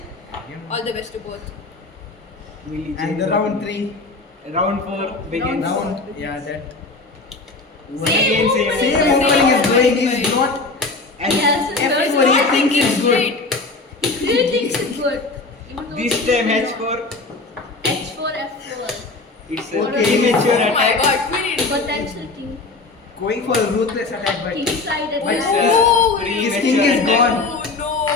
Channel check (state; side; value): quieter; right; 3.5 dB